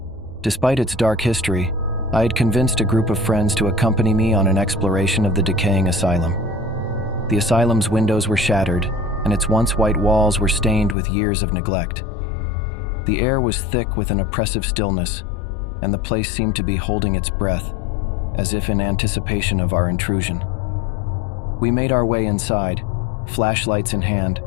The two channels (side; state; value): right; drops out; at 11.0 s